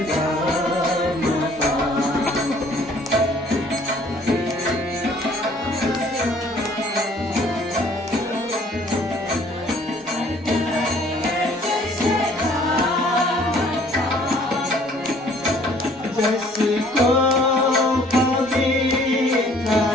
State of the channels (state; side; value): normal; both; correlation 0.57